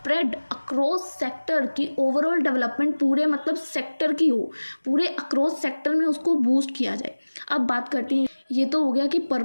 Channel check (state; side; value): inverted; both; correlation -1.00